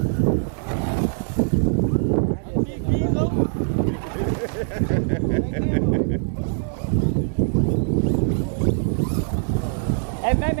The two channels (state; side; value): silent; left; 62 dB below the other